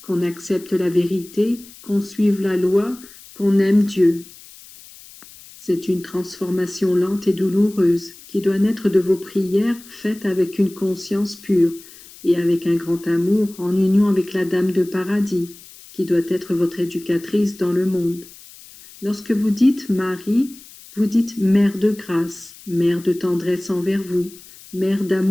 qu'on accepte la vérité, qu'on suive la loi, qu'on aime Dieu. C'est une transformation lente et douloureuse qui doit naître de vos prières faites avec une conscience pure et avec un grand amour en union avec la Dame de Paradis, qui doit être votre éducatrice dans le monde. Lorsque vous dites Marie, vous dites Mère de grâce, Mère de tendresse envers vous, Mère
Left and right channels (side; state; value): left; noise; hiss, 20 dB below the sound